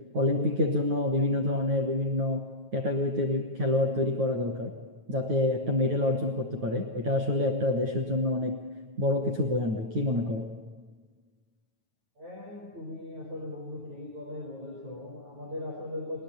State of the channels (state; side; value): late; left; 9.3 ms